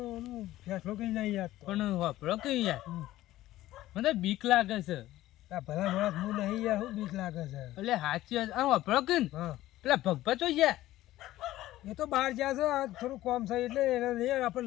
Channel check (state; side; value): quieter; right; 15.3 dB